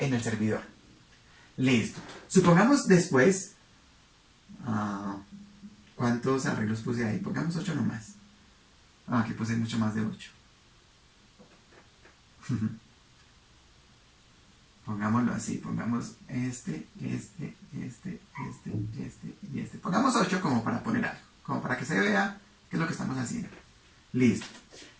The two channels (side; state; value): both; identical; correlation 1.00